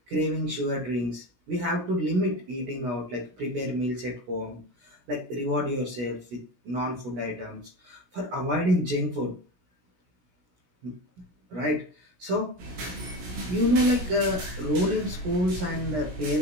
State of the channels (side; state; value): left; late; 17 ms